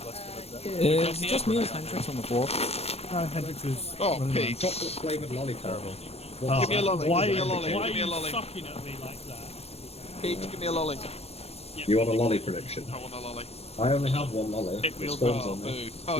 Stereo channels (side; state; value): right; late; 0.30 ms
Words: It's just me and Hendrix on the floor. Hendrix is. Oh, running Pete. Chocolate flavoured lollipop. Oh, Give me a lolly. Why, Give me a lolly. why Give me a are you lolly. sucking at me like that? Pete, give me a lolly. You want a lolly prediction? I want a lolly. I only have one lolly. It It will spawns go. on me. Oh,